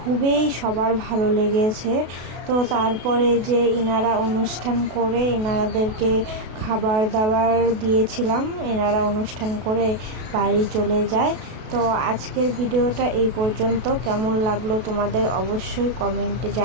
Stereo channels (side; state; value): left; late; 32 ms